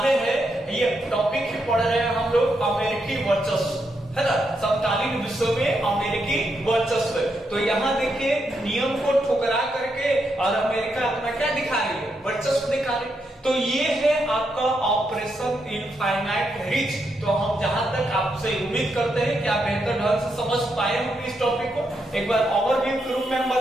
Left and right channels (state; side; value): normal; both; correlation 0.81